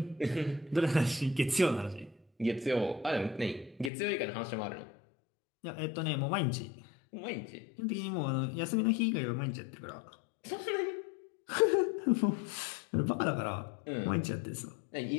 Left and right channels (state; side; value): drops out; right; at 3.9 s